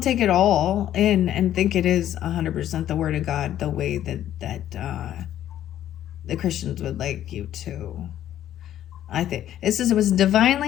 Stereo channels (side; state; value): right; quieter; 11.7 dB